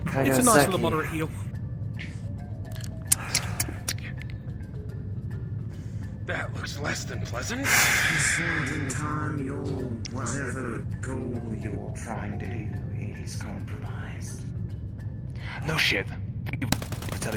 it's a nice little moderate heal. That looks less than pleasant. In time, your whatever goal you're trying to do is compromised. no shit. You're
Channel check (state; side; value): identical; both; correlation 1.00